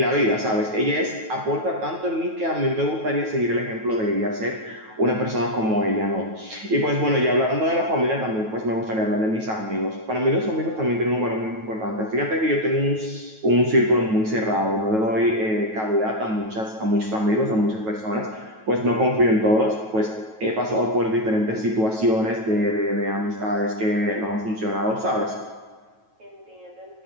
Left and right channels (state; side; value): late; left; 9.2 ms